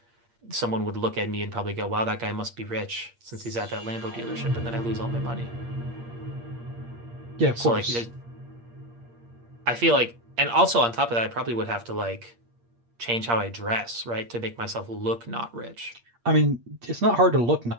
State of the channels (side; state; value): left; late; 8.6 ms